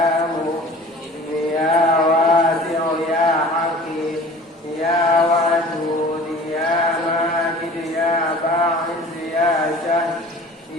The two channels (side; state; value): both; normal; correlation 0.44